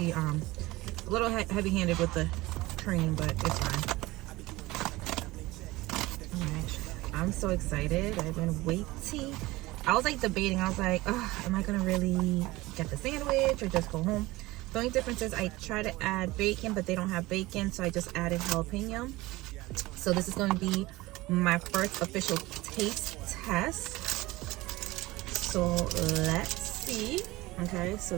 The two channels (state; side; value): quieter; left; 19.8 dB